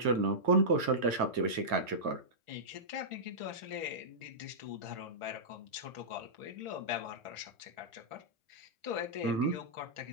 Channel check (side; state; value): left; late; 2.1 ms